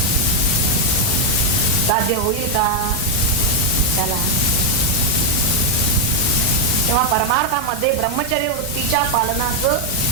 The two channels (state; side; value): normal; both; correlation 0.02